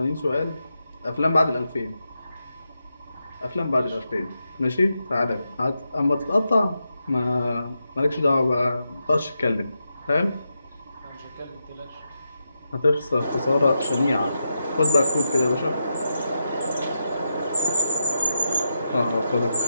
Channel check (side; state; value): both; inverted; correlation -0.86